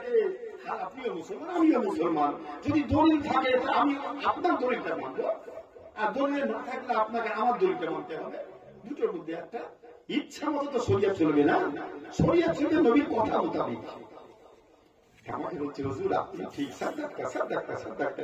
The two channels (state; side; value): identical; both; correlation 1.00